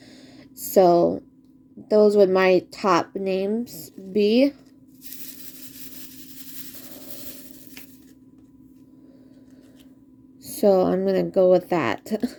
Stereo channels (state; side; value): identical; both; correlation 1.00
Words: So those would my top names be. So I'm gonna go with that.